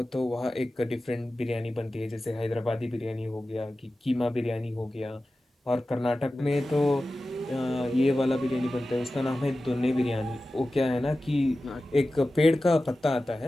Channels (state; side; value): normal; both; correlation 0.95